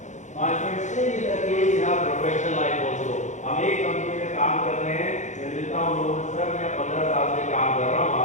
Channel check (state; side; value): late; right; 0.35 ms